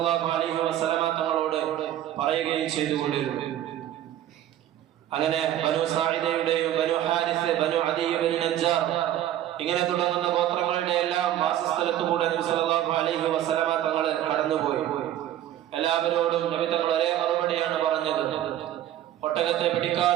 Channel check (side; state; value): left; quieter; 12.2 dB